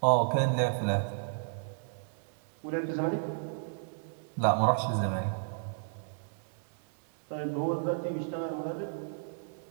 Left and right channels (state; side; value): silent; left; 56 dB below the other